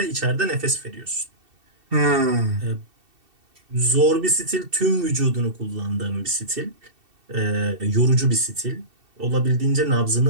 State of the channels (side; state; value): left; late; 2.7 ms